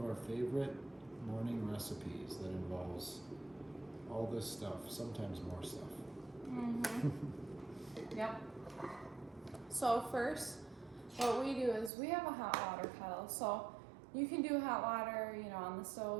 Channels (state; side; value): drops out; left; at 11.9 s